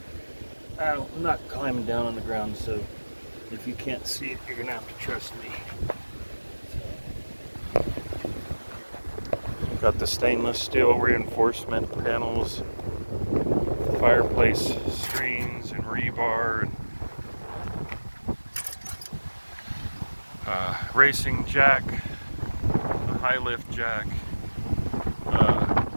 I'm not climbing down on the ground, so if you can't see it, you're gonna have to trust me. Got the stainless steel reinforcement panels, fireplace screens and rebar, and racing jack, a high lift jack. I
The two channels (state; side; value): inverted; both; correlation -1.00